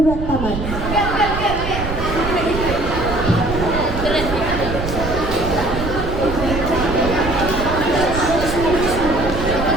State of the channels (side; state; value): right; noise; rumble, 6 dB below the sound